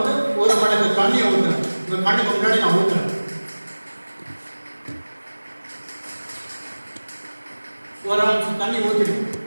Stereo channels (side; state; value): both; inverted; correlation -1.00